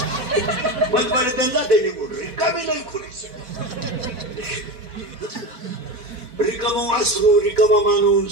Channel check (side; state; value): left; late; 4.1 ms